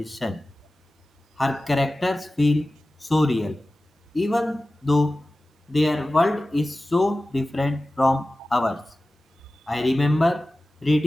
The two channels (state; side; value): normal; both; correlation 0.96